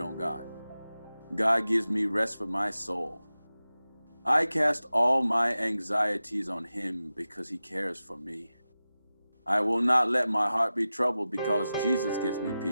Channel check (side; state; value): both; inverted; correlation -0.94